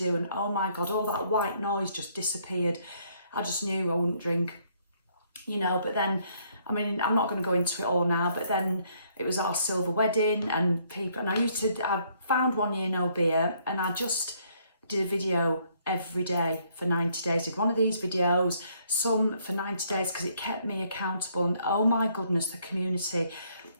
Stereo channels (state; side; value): inverted; both; correlation -0.68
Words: And oh my God, all that white noise just disappeared. I just knew I wouldn't drink, you know. But then, I mean, I'm not going to go into it all now, but then it was our silver wedding and people, and I found 1 year no beer, and I just did a video every day for 90 days. Did one of these videos, some for 90 days, because it kept me accountable. And oh my goodness, the community.